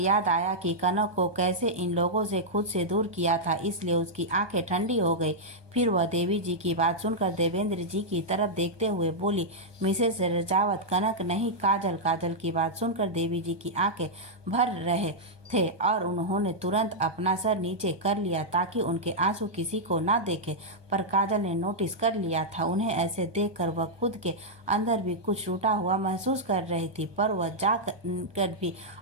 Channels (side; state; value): left; late; 1.2 ms